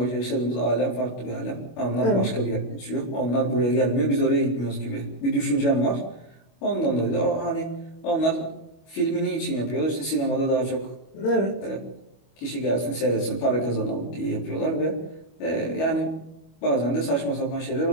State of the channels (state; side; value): late; right; 25 ms